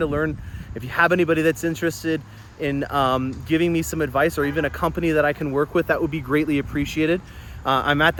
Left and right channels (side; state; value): both; identical; correlation 1.00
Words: learn. If you have anybody that's interested in giving me some advice, or even a company that I can work with, that would be greatly appreciated. I'm at